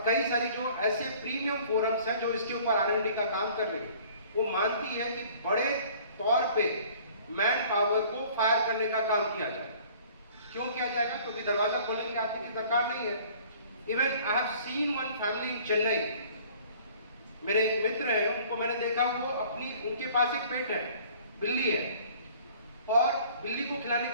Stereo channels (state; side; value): inverted; both; correlation -0.52